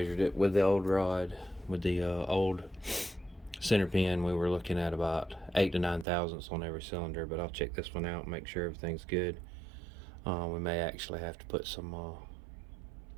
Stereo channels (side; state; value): left; drops out; at 6.1 s